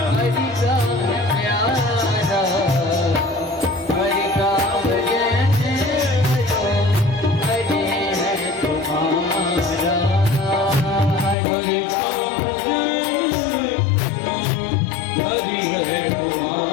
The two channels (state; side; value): drops out; right; at 11.4 s